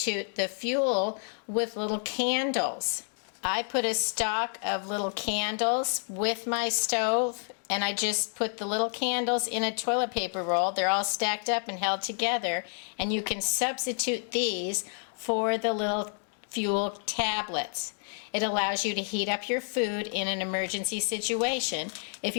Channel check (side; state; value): right; silent; 57 dB below the other